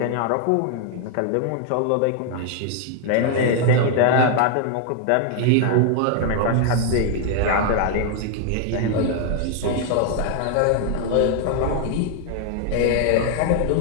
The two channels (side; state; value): both; different; correlation 0.00